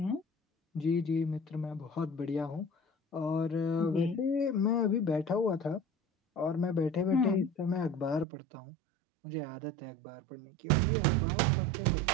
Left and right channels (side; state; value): left; drops out; at 8.2 s